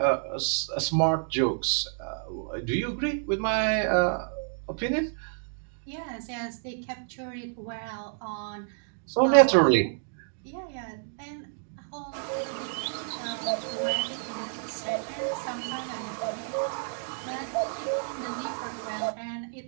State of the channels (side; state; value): left; silent; digital silence